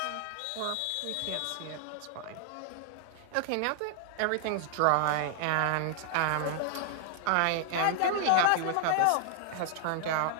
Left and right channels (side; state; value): both; different; correlation 0.00